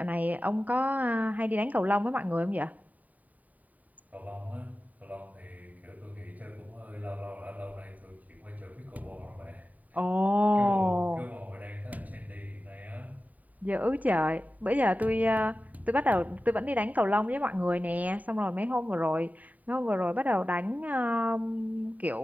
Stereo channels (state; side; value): late; left; 0.074 ms